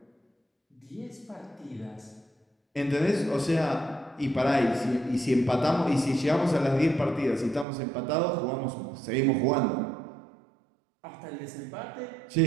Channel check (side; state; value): left; drops out; at 7.7 s